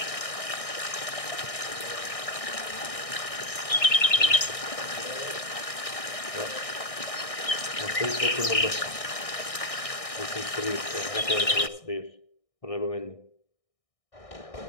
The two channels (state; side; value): late; right; 1.6 ms